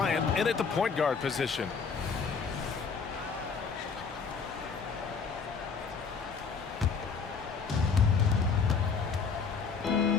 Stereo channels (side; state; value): right; quieter; 5.5 dB